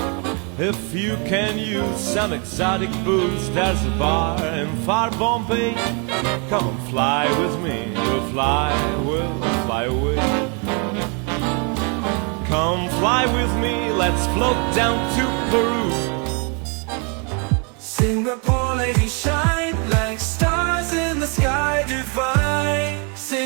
If you can use some exotic booze, there's a bar in far Bombay. Come and fly with me, we'll fly away. Come fly with me, let's float down to Peru. Singapore ladies shine like stars in the sky divine.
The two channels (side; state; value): left; quieter; 35.5 dB